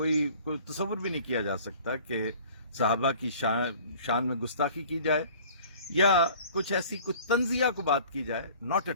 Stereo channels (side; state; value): both; inverted; correlation -0.49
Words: تصور بھی نہیں کیا جا سکتا کہ صحابہ کی شان میں گستاخی کی جائے یا کچھ ایسی کچھ تنزیہ کو بات کی جائے، ناٹ